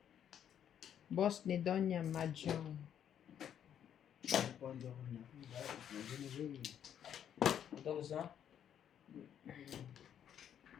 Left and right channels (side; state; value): right; quieter; 9.4 dB